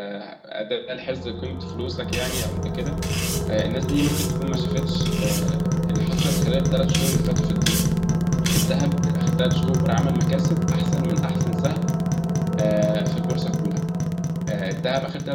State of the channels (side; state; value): both; identical; correlation 1.00